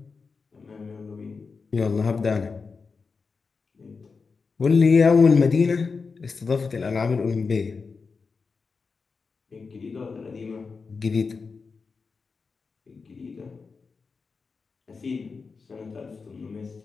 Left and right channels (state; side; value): quieter; right; 4.8 dB